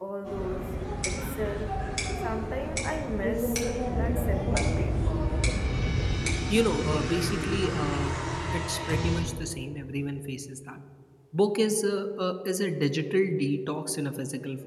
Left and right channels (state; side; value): identical; both; correlation 1.00